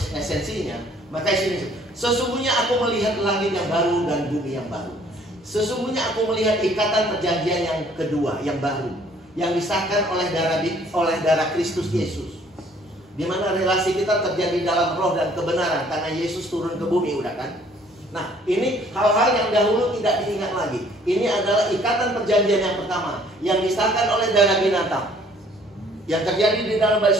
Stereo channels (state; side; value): normal; both; correlation 0.59